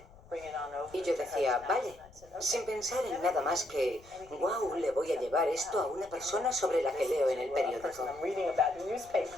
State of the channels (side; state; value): left; noise; rumble, 24 dB below the sound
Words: Y yo decía, vale, sin pensar en nada más que, wow, le voy a llevar esto a una persona sobre la que leo en el periódico.